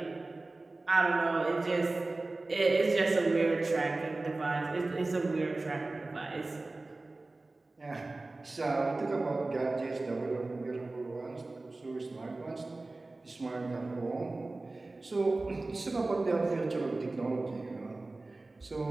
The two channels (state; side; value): quieter; left; 3.2 dB